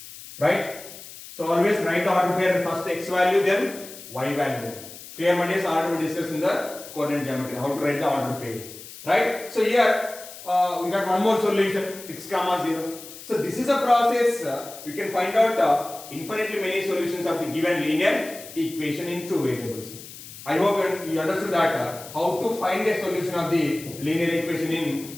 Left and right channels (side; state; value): left; noise; hiss, 15 dB below the sound